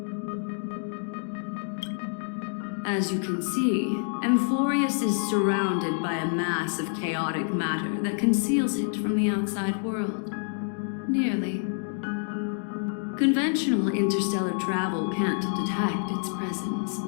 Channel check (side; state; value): right; silent; 60 dB below the other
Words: As you can see, Amphorius is surrounded by a mass of chaotic matter that conceals it from the outside world. Nearly. Conventional interstellar travel can't detect its presence,